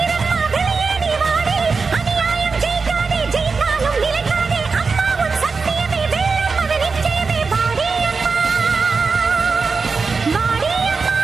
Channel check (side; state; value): left; quieter; 4.6 dB